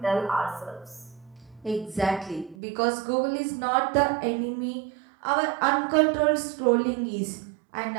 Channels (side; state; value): left; drops out; at 2.6 s